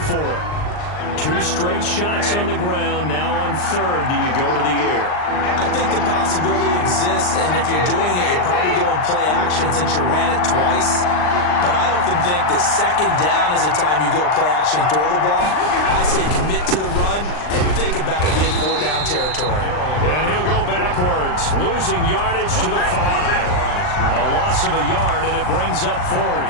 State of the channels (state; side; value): late; right; 39 ms